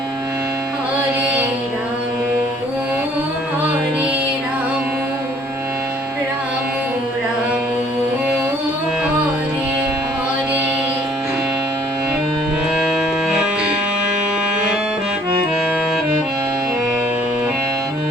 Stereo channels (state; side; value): normal; both; correlation 0.59